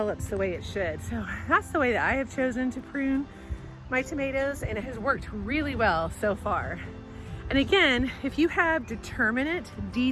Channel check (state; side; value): identical; both; correlation 1.00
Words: the way it should. So that's the way that I have chosen to prune my tomatoes, and it has worked really well so far. And again, if you have determinate